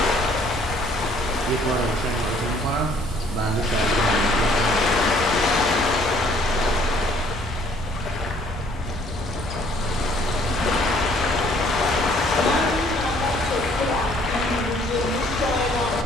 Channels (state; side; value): normal; both; correlation 0.60